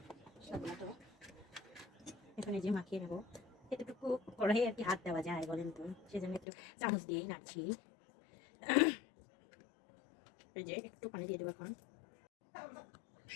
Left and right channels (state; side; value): drops out; right; at 6.5 s